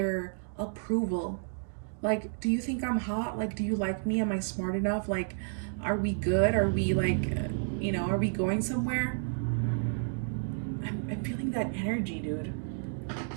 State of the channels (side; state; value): left; silent; digital silence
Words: approval. Like, do you think I'm hot? Like, do you like me? Am I smart enough? Like, are we good? Are we like, are we going somewhere? I'm feeling that energy, dude.